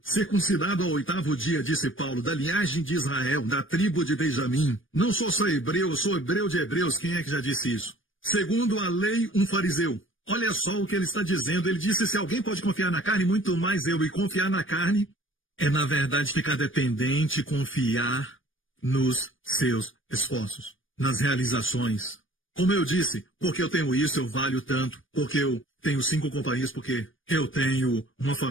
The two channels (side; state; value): right; late; 0.58 ms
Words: circuncidado ao 8º dia, disse Paulo, da linhagem de Israel, da tribo de Benjamim. Não sou só hebreu, eu sou hebreu de hebreus. Quem é que já disse isso? Segundo a lei, um fariseu. Olha só o que ele está dizendo. Ele disse, se alguém pode confiar na carne, muito mais eu. E confiar na carne é, na verdade, ficar dependente, confiar nos seus esforços, nas realizações. Como eu disse, porque eu tenho isso, eu valho tanto, porque eu tenho 5 companhias, porque eu tenho uma